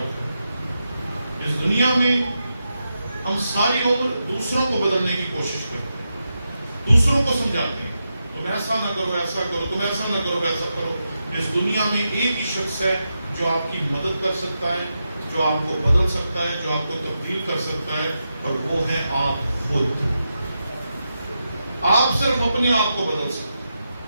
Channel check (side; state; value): both; inverted; correlation -0.87